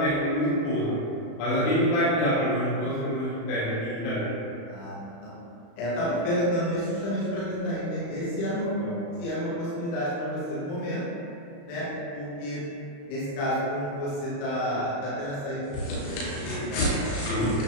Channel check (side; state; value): right; late; 35 ms